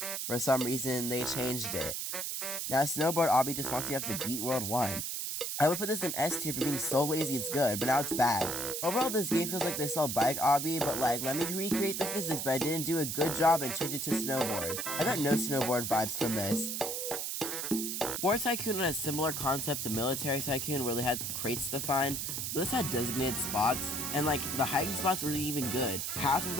For some reason, they changed it. Now, Snowboard Obby just wants you to have to beat World 1. I would put this in S tier for being so lazy it's good, but now it's bad. Overall, this game feels like they sell Bike Obby, but like, let me recreate the physics, but I didn't do a good job and change it to Snowboard. I got no Snowboard vibes from this. War Tycoon had a similar concept to Military Tycoon where they had crates to find, but this had designated spots, and like, the hiding spots were even good. Half of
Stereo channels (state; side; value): noise; right; hiss, 3 dB below the sound